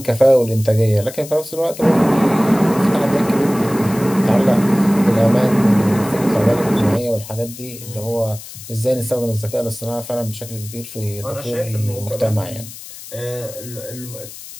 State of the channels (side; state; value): left; noise; hiss, 15 dB below the sound